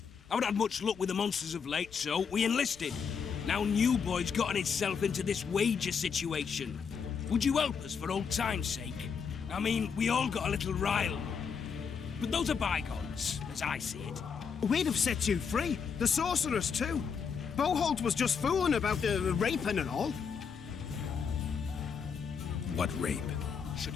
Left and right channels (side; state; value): right; quieter; 6.3 dB